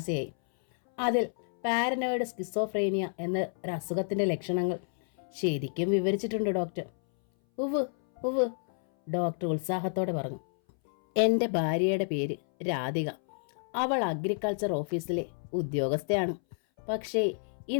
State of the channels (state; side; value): silent; right; 58 dB below the other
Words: അതിൽ പാരനോയിഡ് സ്കിസോഫ്രേനിയ എന്ന ഒരു അസുഖത്തിൻ്റെ ലക്ഷണങ്ങൾ ശരിക്കും വിവരിച്ചിട്ടുണ്ട് ഡോക്ടർ. ഉവ് ഉവ്, ഡോക്ടർ ഉത്സാഹത്തോടെ പറഞ്ഞു. എൻ്റെ ഭാര്യയുടെ പേര് രാധിക. അവൾ അഗ്രികൾച്ചർ ഓഫീസിലെ ഉദ്യോഗസ്ഥയാണ്. പക്ഷേ